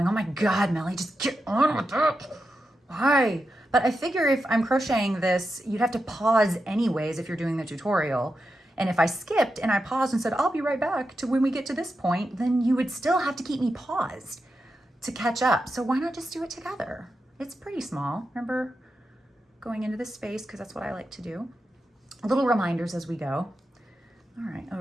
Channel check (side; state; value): both; normal; correlation 0.88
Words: oh my God, Melly, just get on with it. Why? But I figure if I'm crocheting this, you'd have to pause anyways if you're doing the tutorial. And if I skipped and I paused and said, I'll be right back to when we get to this point, then you would still have to keep me paused to catch up. So why not just do it together? It's pretty small. Remember going into this space because that's what I like to do. Little reminders as we go. All right,